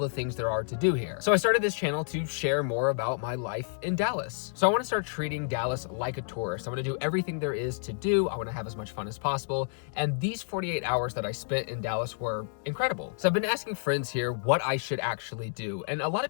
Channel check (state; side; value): silent; right; digital silence